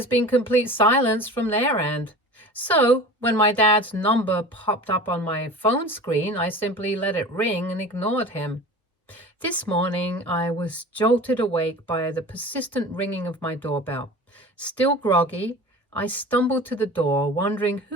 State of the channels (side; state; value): both; normal; correlation 0.37